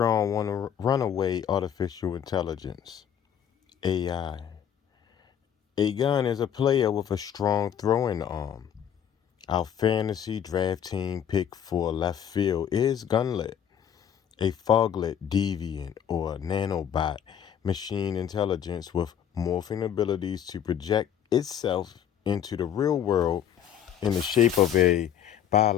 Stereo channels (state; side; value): quieter; right; 9.2 dB